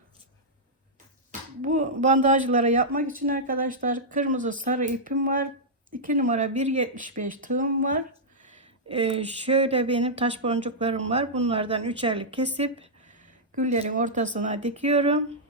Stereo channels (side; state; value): both; normal; correlation -0.09